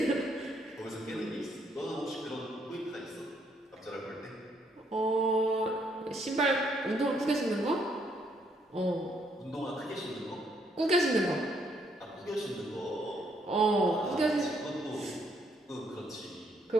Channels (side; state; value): both; normal; correlation 0.71